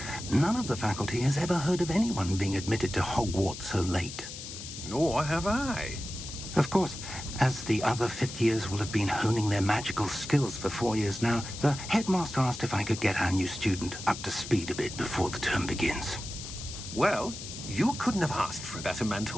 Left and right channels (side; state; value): left; noise; hiss, 10 dB below the sound